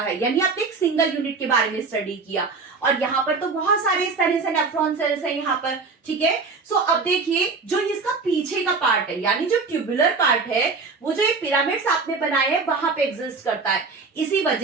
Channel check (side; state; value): left; quieter; 4.5 dB